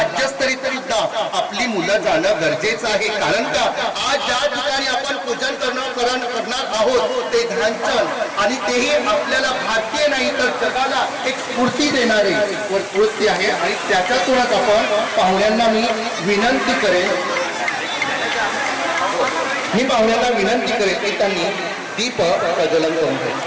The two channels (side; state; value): both; identical; correlation 1.00